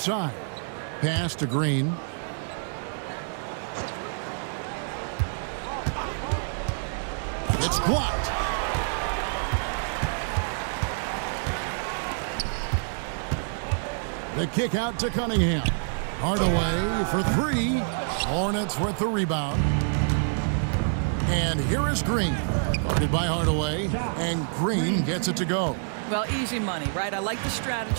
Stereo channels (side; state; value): left; silent; 60 dB below the other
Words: Pass to Green. It's blocked. The kick out to Cunningham. Hardaway for 3. Hornets with the rebound. And here is Green. Guarded by Hardaway. And Green gets it to go. Well, easy money, right? I like the